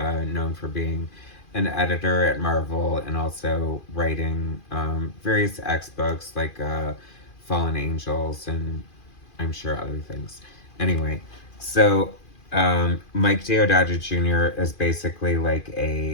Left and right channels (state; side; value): late; right; 2.4 ms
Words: for being an editor at Marvel and also writing various X books like Fallen Angels and I'm sure other things. Anyway, so Mike Deodato Jr. is basically like